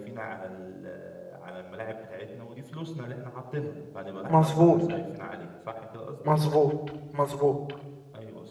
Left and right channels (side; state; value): both; identical; correlation 1.00